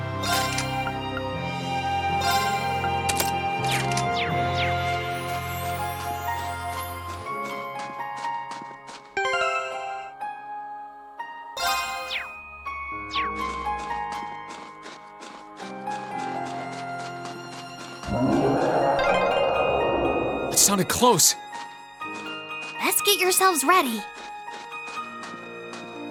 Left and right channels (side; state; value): both; identical; correlation 1.00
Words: It sounded close. Let's get yourselves ready.